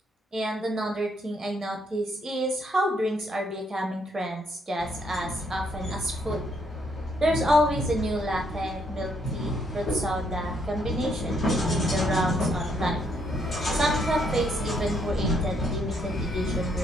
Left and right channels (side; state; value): both; normal; correlation 0.72